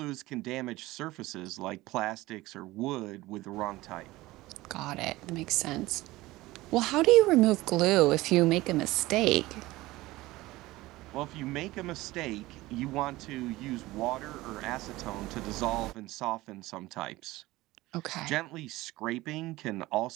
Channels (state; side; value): quieter; left; 18.8 dB